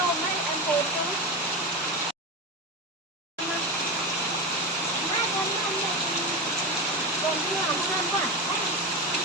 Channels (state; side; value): normal; both; correlation 0.19